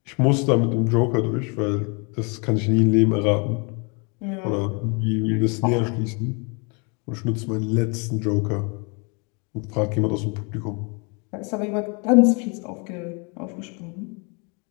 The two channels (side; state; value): right; quieter; 33.5 dB